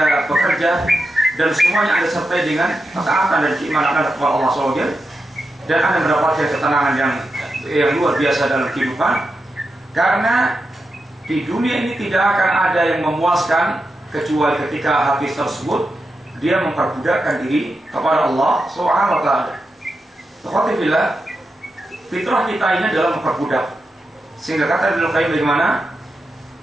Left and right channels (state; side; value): normal; both; correlation 0.88